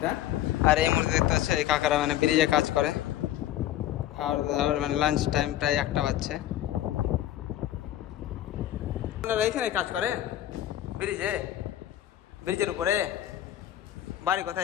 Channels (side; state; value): right; quieter; 12.9 dB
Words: আর এই মুহূর্তে দেখতে পাচ্ছ এই কাকারা মানে ব্রিজে কাজ করে। আর মানে লাঞ্চ টাইম প্রায় 1টা বাজছে। আপনারা এইখানে কাজ করেন ব্রিজে, ব্রিজের উপরে? বাড়ি